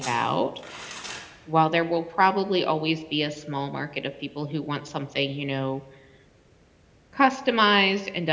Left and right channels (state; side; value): identical; both; correlation 1.00